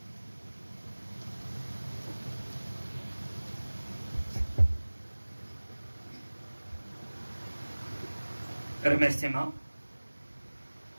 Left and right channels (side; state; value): both; inverted; correlation -1.00